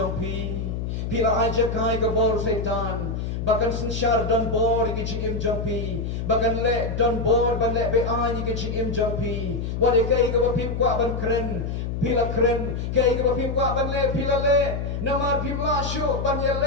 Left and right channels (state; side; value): noise; left; hum, 3 dB below the sound